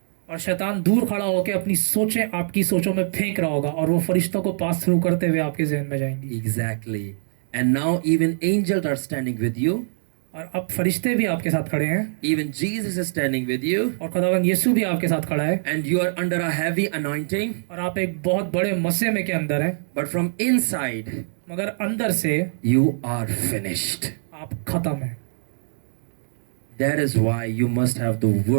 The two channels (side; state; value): left; silent; digital silence